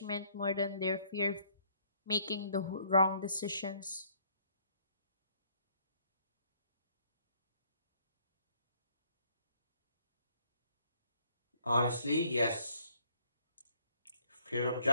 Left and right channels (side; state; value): both; inverted; correlation -0.65